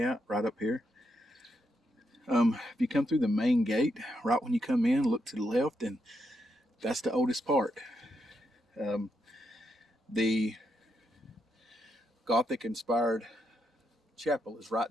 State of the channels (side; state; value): both; normal; correlation 0.81